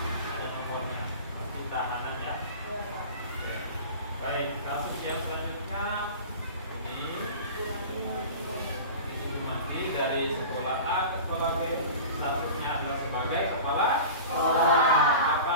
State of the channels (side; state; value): both; inverted; correlation -0.35